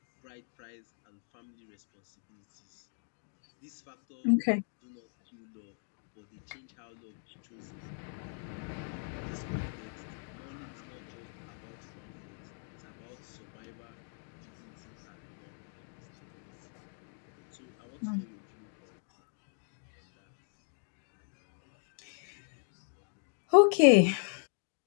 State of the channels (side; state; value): right; silent; 53 dB below the other